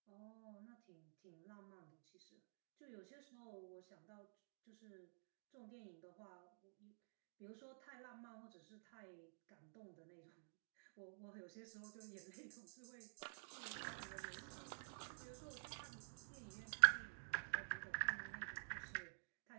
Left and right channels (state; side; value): silent; left; digital silence